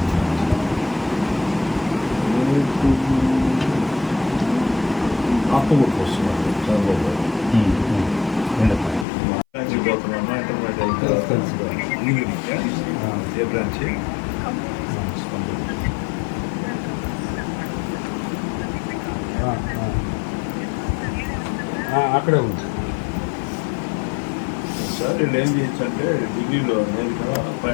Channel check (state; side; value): drops out; right; at 9.1 s